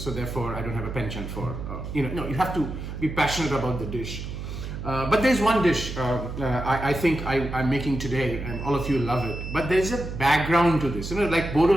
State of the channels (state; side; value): noise; right; hum, 7 dB below the sound